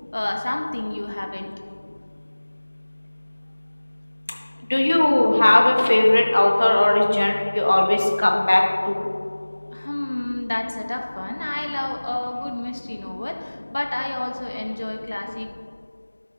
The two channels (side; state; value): both; inverted; correlation -1.00